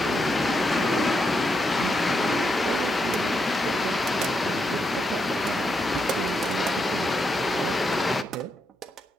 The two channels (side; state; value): both; normal; correlation 0.82